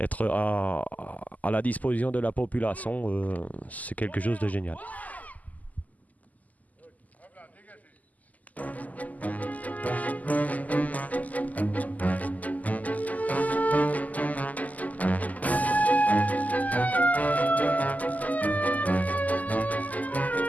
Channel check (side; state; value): right; late; 0.078 ms